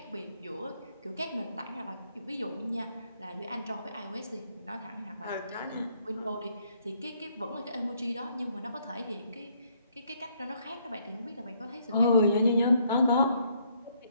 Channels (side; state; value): both; inverted; correlation -0.70